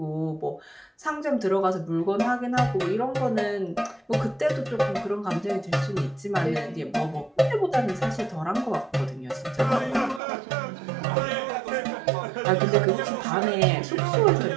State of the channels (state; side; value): drops out; left; at 10.2 s